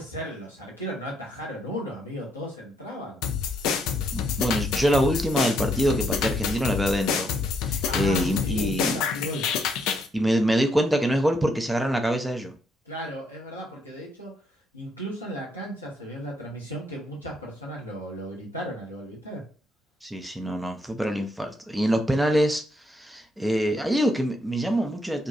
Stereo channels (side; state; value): both; normal; correlation 0.74